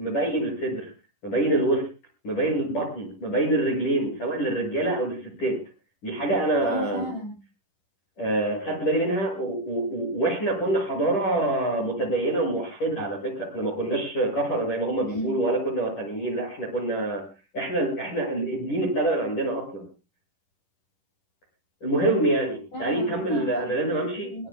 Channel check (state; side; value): late; right; 10 ms